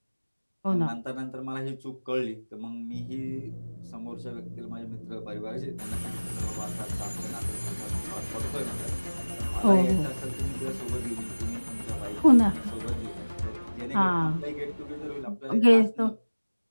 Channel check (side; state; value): both; inverted; correlation -1.00